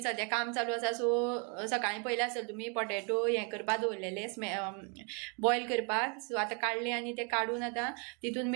सद्या काम चालू आसा सो सकाळीं पयले आसतले तुमी पोटेटो हें करपाक दवरलेले बॉयल करपाक. सो आतां काडले आनी ते काडून आतां तितून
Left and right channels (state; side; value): quieter; left; 36.4 dB